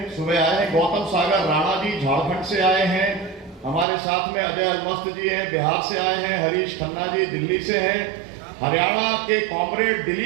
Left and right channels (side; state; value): left; drops out; at 3.9 s